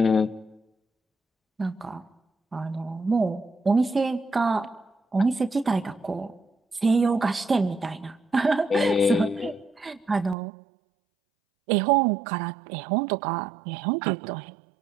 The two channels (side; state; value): left; drops out; at 10.4 s